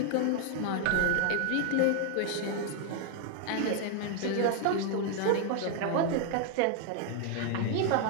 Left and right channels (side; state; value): both; different; correlation 0.00